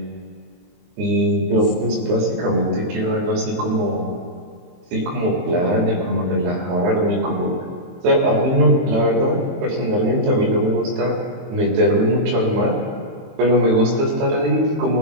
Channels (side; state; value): left; late; 23 ms